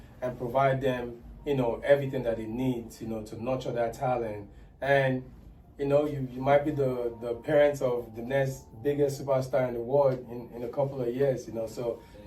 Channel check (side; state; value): both; identical; correlation 1.00